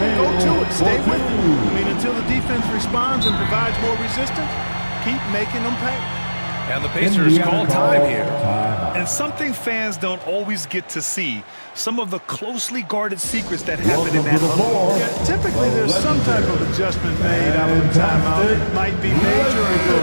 go to it. Stay with it. I mean, until the defense responds and provides more resistance, keep making them pay. And the Pacers call time here. And something fans don't always get to see, some of the closely guarded secrets that happen in that huddle. Yeah, typically there's some type of adjustment made out of the timeout. It might be major or it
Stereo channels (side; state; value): both; inverted; correlation -1.00